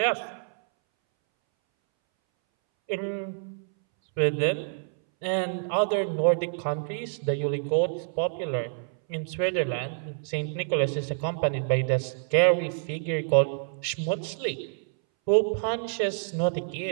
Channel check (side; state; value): left; silent; 60 dB below the other